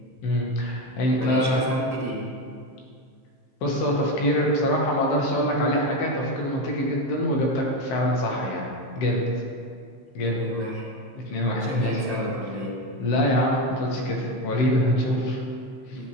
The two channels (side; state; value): right; late; 15 ms